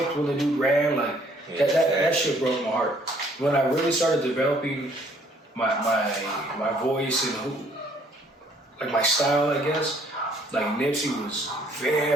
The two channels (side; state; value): both; normal; correlation 0.62